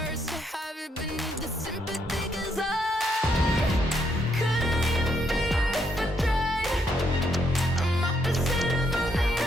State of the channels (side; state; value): both; normal; correlation 0.75